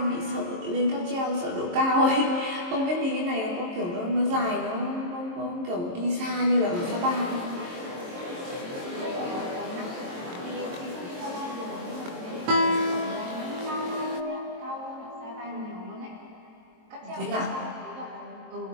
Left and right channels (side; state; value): left; late; 23 ms